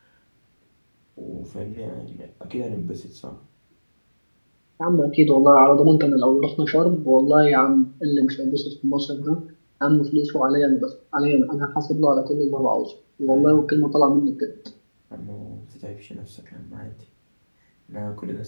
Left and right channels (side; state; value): both; inverted; correlation -1.00